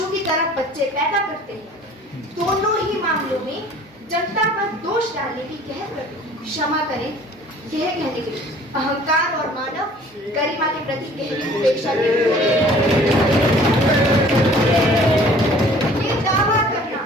की तरह बच्चे पैदा करते हैं। दोनों ही मामलों में जनता पर दोष डालने की कह कर क्षमा करें, यह कहने के अहंकार और मानव गरिमा के प्रति गहरी उपेक्षा ये दावा करना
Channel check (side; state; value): both; normal; correlation 0.51